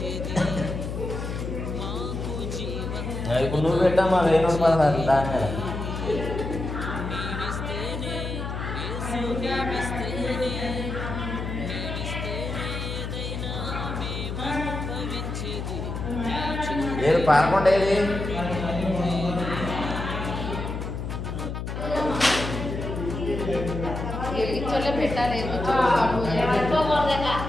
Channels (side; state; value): left; noise; hum, 5 dB below the sound